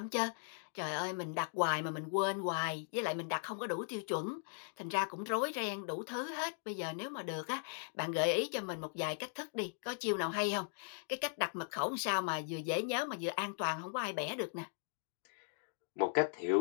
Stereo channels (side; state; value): right; silent; digital silence